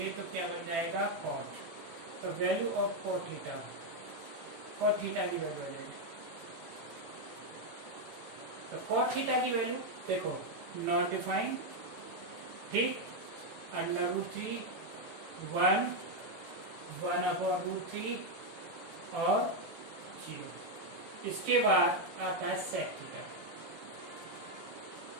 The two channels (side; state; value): left; late; 18 ms